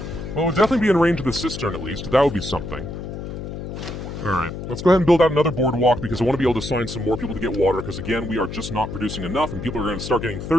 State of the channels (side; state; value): left; noise; hum, 8 dB below the sound